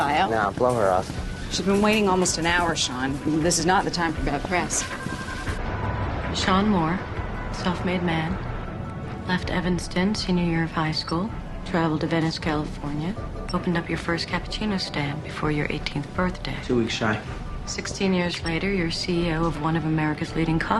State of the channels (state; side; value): identical; both; correlation 1.00